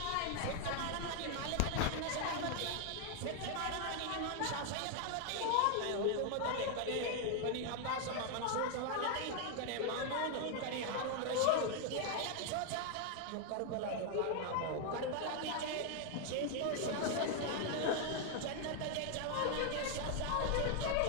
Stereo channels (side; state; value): both; different; correlation 0.00